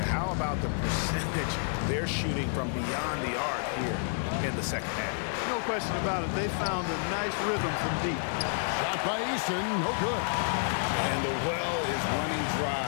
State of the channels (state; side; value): silent; right; 58 dB below the other